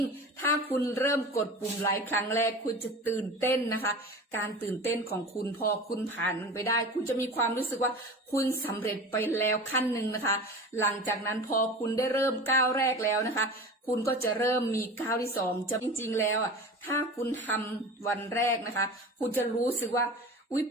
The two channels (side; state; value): both; normal; correlation 0.34